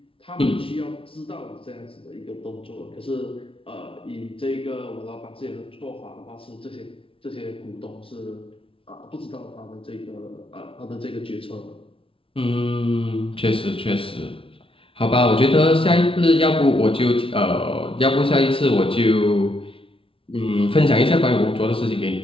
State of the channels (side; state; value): right; late; 0.26 ms